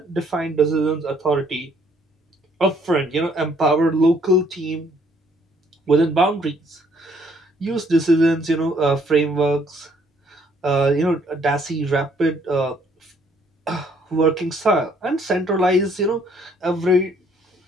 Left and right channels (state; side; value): normal; both; correlation 0.64